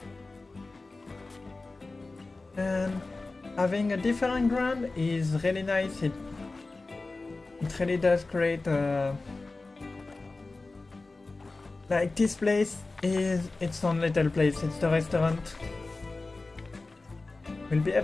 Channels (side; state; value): right; quieter; 3.4 dB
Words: And having a different ground is really nice. It really does create a... Like this place is its own little place. It's the restaurant. We'll be